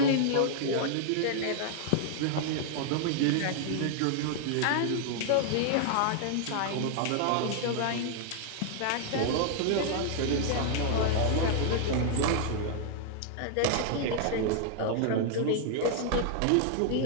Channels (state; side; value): different; both; correlation 0.00